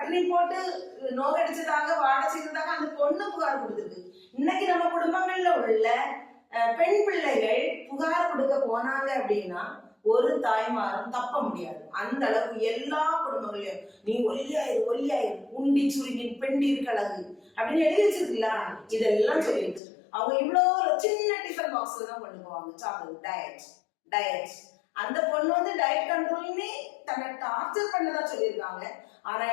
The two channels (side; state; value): right; drops out; at 19.8 s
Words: போட்டு நோக்கடிச்சதாக வாட செய்ததாக அந்த பொண்ணு புகார் கொடுத்துருக்கு. இன்னைக்கு நம்ம குடும்பங்கள்ல உள்ள பெண் பிள்ளைகள் புகார் கொடுக்க போனாங்க அப்படின்னா ஒரு தாய்மாரும் தப்ப முடியாது. அந்த அளவுக்கு எல்லா குடும்பங்களையும் நீ ஒல்லியாயிரு உண்டி சுருங்கி பெண்டீர் கழகு அப்படின்னு எழுதி வச்சிருக்கீங்களா, இதெல்லாம் சொல்லிடுச்சு. அவங்க இவ்வளவு சின்ன டிஃபன் பாக்ஸ்ல தான் கொண்டு போவாங்க சாப்பிடுறது. டயட் அந்த பொண்ணு டயட் கண்ட்ரோல்னே தன்னை டார்ச்சர் பண்ணதா சொல்லியிருக்காங்க. ஆனா